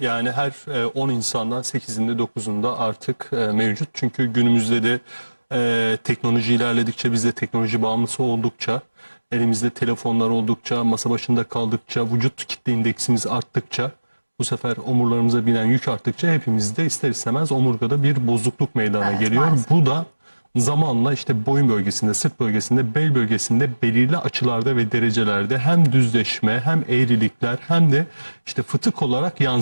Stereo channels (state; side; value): inverted; both; correlation -1.00